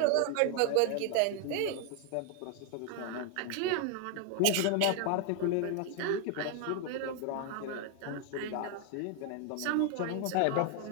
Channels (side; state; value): both; different; correlation 0.01